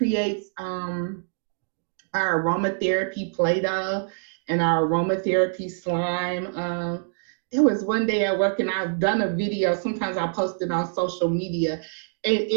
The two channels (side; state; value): left; silent; digital silence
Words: our aromatherapy Play-Doh and our aromatherapy slime. There was one day at work, and I've done a video. Sometimes I post it on social media. And